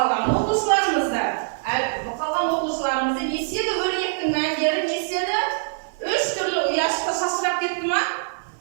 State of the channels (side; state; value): left; silent; digital silence